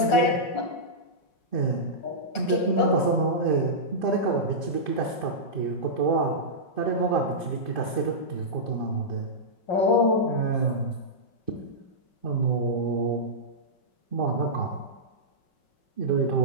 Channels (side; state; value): right; late; 5.0 ms